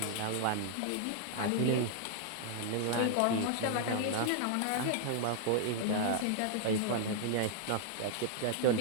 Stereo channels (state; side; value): different; both; correlation 0.00